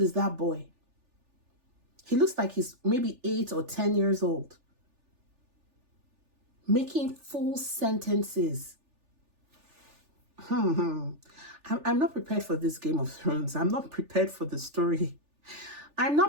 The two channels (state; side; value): late; left; 3.4 ms